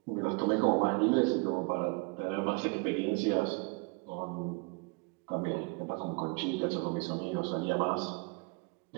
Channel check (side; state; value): left; quieter; 30.6 dB